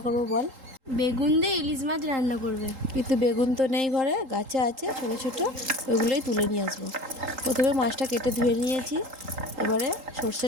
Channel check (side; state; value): left; late; 3.8 ms